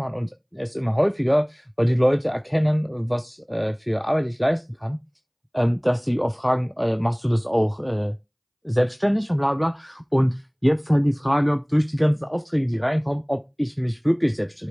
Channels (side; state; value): both; identical; correlation 1.00